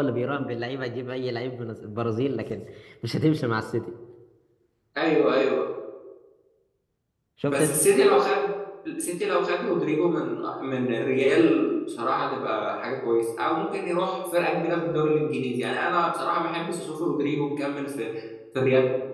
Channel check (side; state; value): both; identical; correlation 1.00